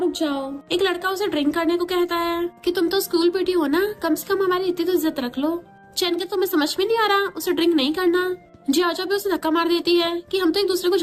रुक जाओ। एक लड़का उसे ड्रिंक करने को कहता है कि तुम तो स्कूल पीटी हो ना, कम से कम हमारी इतनी तो इज्जत रख लो। चैन के तुम्हें समझ में नहीं आ रहा उसे ड्रिंक नहीं करना। जियाजो भी उसे धक्का मार देती है कि हम तो एक दूसरे को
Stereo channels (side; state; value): both; identical; correlation 1.00